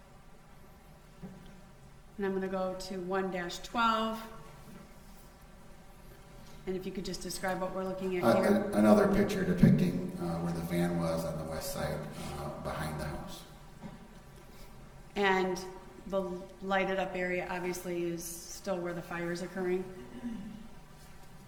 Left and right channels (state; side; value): identical; both; correlation 1.00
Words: And I'm going to go to 1-12. And if you could just describe what we're looking at here. Another picture depicting where the van was on the west side behind the house. And the lighted up area obviously is still where the fire is occurring?